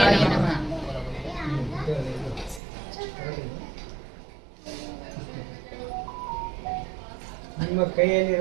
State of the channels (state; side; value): drops out; left; at 2.6 s